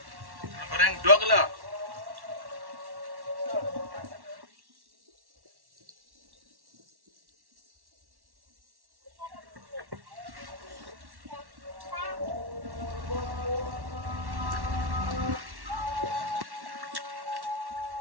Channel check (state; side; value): late; left; 1.1 ms